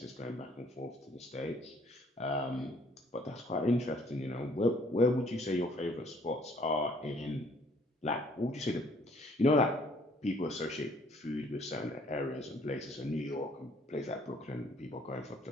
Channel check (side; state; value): both; normal; correlation 0.61